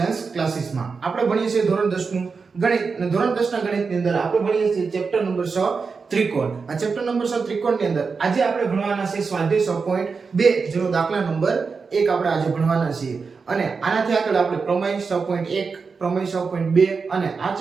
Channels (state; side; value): quieter; left; 5.0 dB